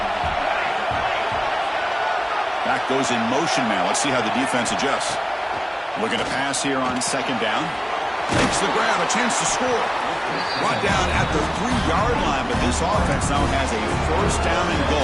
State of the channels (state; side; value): identical; both; correlation 1.00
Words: Back goes in motion now. Let's see how the defense adjusts. Looking to pass here on 2nd down. Makes the grab. A chance to score. Brought down at the 3-yard line, but this offense now has a 1st down and